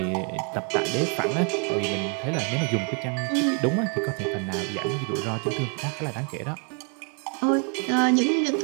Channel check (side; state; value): left; quieter; 38.0 dB